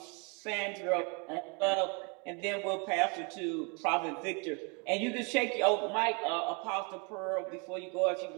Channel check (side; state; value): left; quieter; 33.0 dB